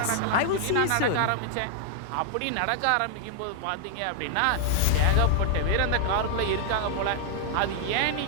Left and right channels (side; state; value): both; different; correlation -0.01